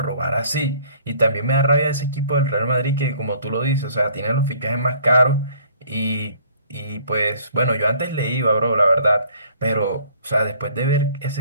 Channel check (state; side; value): inverted; both; correlation -0.57